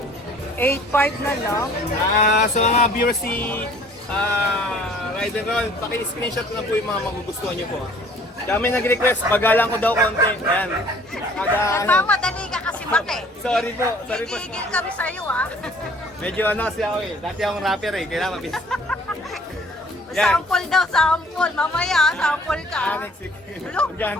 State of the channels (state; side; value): normal; both; correlation 0.54